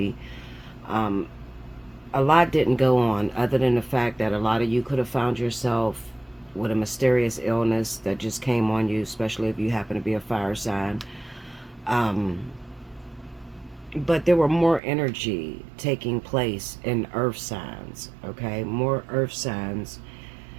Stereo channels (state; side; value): drops out; left; at 14.8 s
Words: um, a lot didn't go on other than the fact that a lot of you could have found yourself with a mysterious illness that just came on you, especially if you happen to be a fire sign. Um, but there were more energy taking place in earth signs, okay? More earth signs